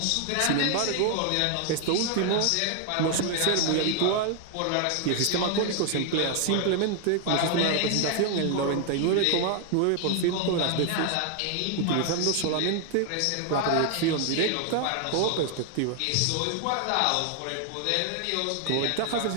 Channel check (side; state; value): both; different; correlation 0.00